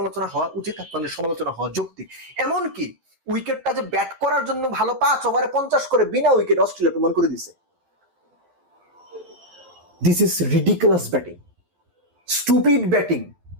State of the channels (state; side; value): late; left; 11 ms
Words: হওয়া উচিত, আপনাদের সমালোচনা হওয়া যৌক্তিক। এমনকি উইকেটটা যে ব্যাট করার জন্য ভালো, 5 ওভারে 50 করে বিনা উইকেট অস্ট্রেলিয়া প্রমাণ করে দিছে। This is ridiculous batting, stupid batting.